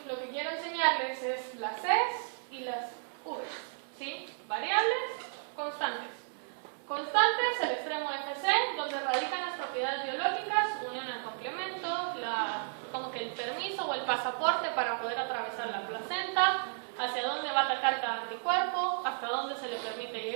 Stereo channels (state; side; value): silent; left; 56 dB below the other